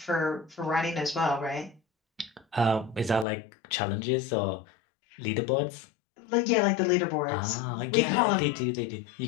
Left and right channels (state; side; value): drops out; right; at 3.2 s